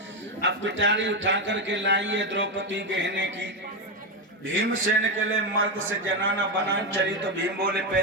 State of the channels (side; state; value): both; normal; correlation 0.09